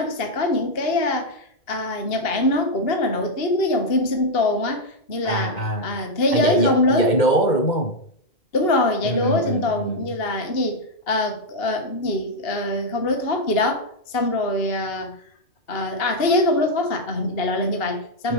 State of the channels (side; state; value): right; late; 2.8 ms